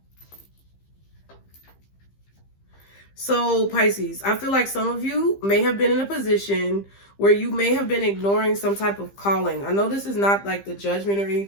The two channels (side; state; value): right; late; 15 ms